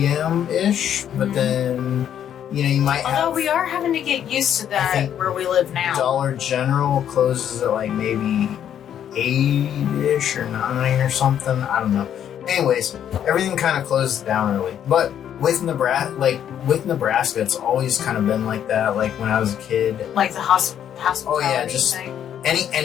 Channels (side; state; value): right; quieter; 9.7 dB